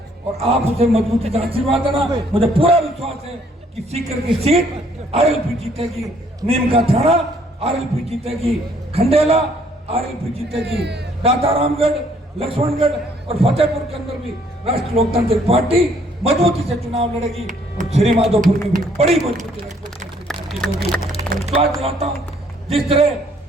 और आप उसे मजबूती से आशीर्वाद देना। मुझे पूरा विश्वास है कि सीकर की सीट आरएलपी जीतेगी, नीम का थाना आरएलपी जीतेगी, खंडेला आरएलपी जीतेगी, दातारामगढ़, लक्ष्मणगढ़ और फतेहपुर के अंदर भी राष्ट्रीय लोकतांत्रिक पार्टी मजबूती से चुनाव लड़ेगी और श्री माधोपुर में भी बड़ी मजबूती से होगी। विश्वास दिलाता हूँ, जिस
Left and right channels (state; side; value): normal; both; correlation 0.64